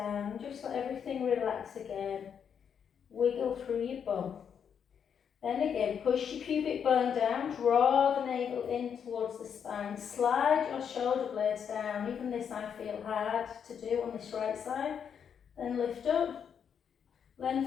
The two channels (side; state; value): right; quieter; 7.6 dB